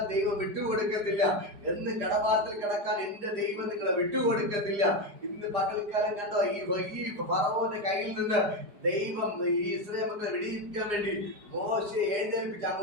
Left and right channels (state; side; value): late; left; 4.9 ms